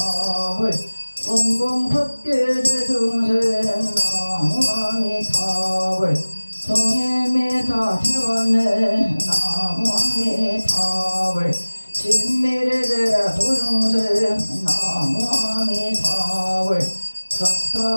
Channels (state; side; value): inverted; both; correlation -1.00